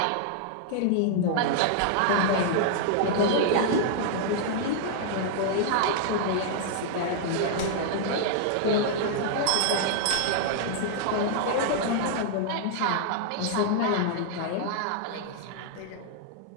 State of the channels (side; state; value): both; different; correlation -0.01